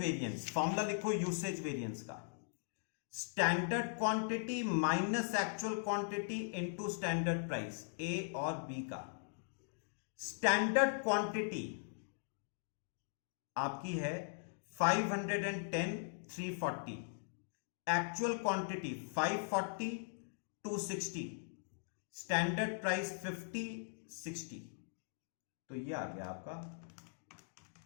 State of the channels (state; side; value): silent; right; digital silence